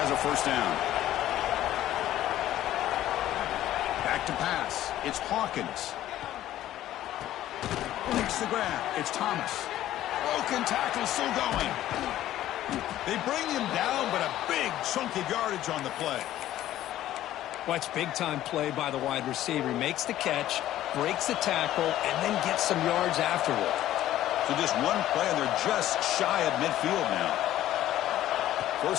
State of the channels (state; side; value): quieter; right; 13.4 dB